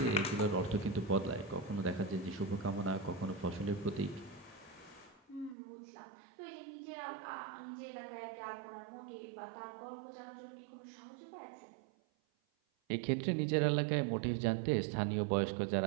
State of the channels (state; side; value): drops out; left; at 5.6 s